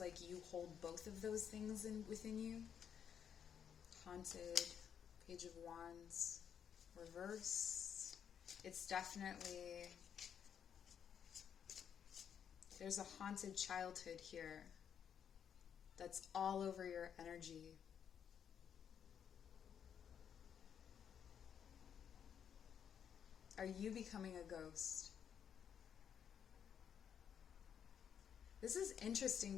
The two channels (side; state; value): right; quieter; 8.2 dB